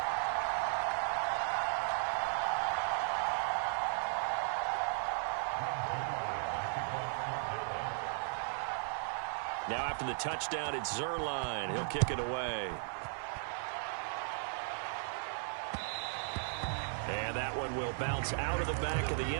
Now after the touchdown, it's Zuerlein. He'll kick it away. And that one will bounce out of the back of the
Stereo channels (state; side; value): silent; left; 54 dB below the other